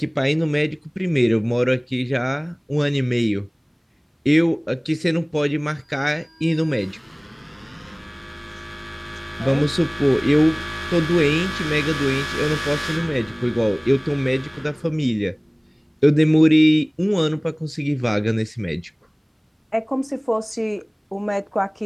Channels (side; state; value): both; identical; correlation 1.00